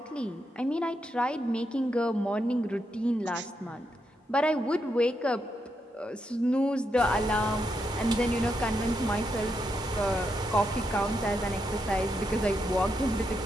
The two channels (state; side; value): normal; both; correlation 0.82